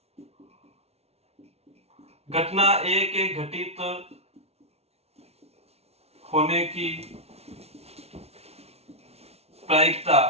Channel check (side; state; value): left; late; 0.30 ms